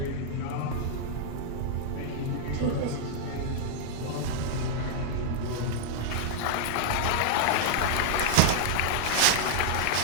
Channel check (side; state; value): both; different; correlation -0.01